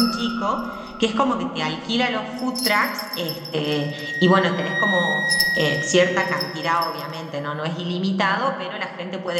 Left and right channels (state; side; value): identical; both; correlation 1.00